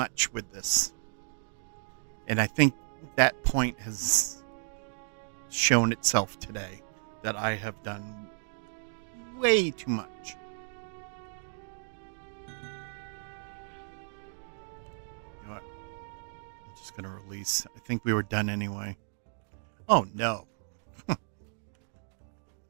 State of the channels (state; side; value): silent; left; digital silence